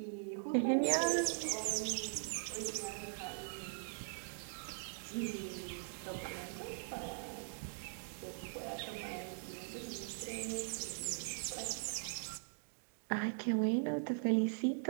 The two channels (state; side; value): silent; left; digital silence